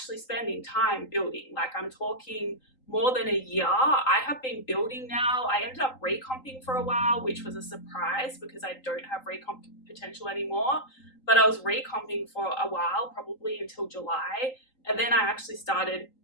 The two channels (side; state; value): right; late; 3.8 ms